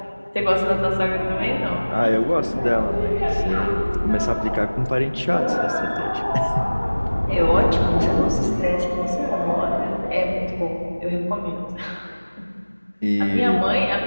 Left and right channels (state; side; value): inverted; both; correlation -1.00